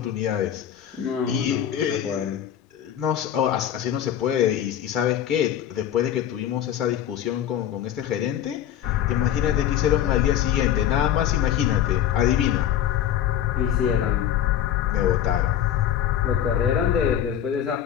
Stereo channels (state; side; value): quieter; right; 10.5 dB